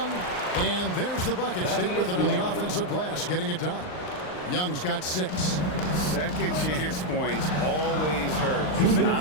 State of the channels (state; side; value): late; right; 39 ms